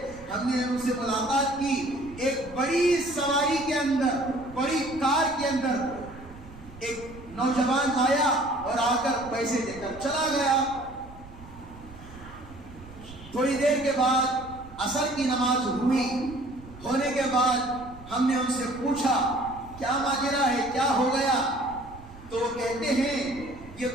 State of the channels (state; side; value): noise; right; rumble, 18 dB below the sound